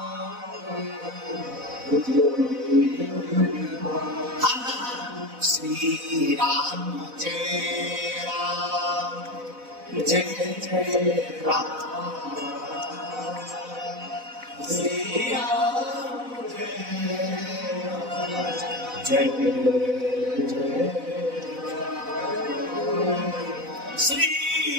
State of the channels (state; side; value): late; left; 4.0 ms